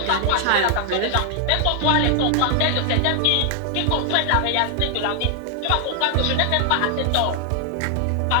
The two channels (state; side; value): different; both; correlation 0.00